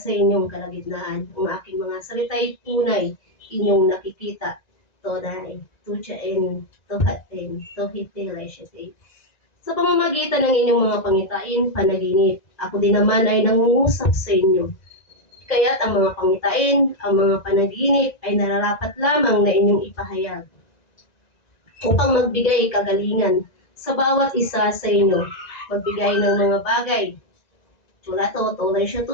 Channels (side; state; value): right; late; 1.9 ms